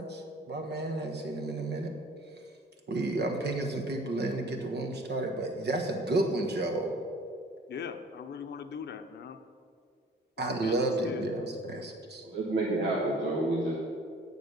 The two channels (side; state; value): both; normal; correlation 0.50